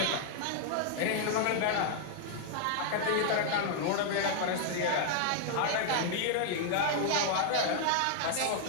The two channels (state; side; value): different; both; correlation 0.00